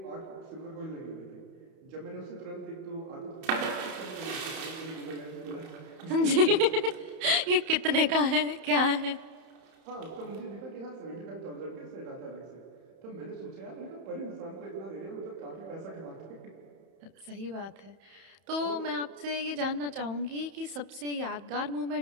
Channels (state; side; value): late; left; 31 ms